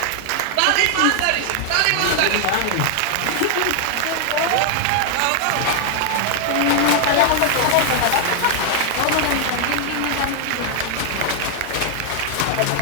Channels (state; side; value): different; both; correlation 0.00